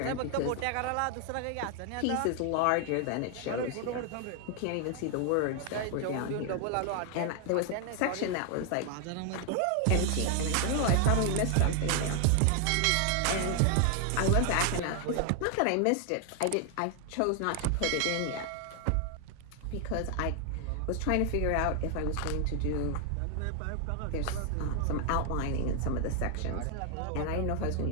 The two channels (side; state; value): both; different; correlation 0.00